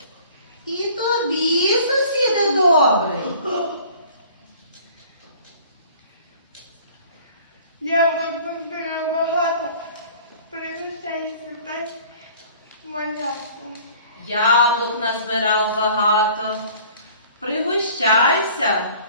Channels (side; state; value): both; inverted; correlation -0.50